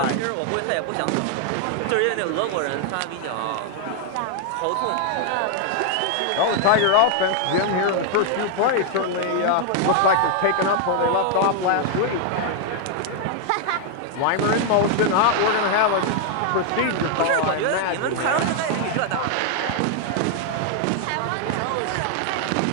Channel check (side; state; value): both; different; correlation 0.00